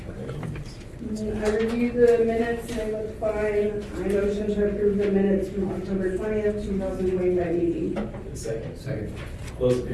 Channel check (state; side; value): identical; both; correlation 1.00